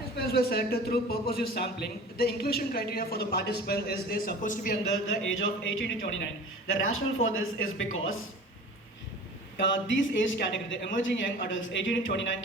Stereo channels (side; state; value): both; normal; correlation 0.40